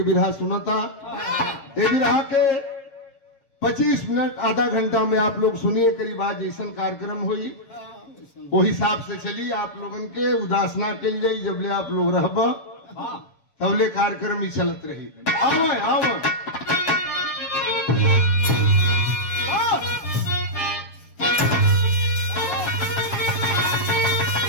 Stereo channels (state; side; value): late; right; 7.1 ms